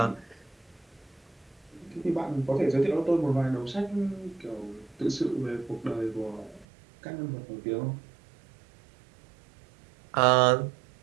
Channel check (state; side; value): drops out; left; at 6.7 s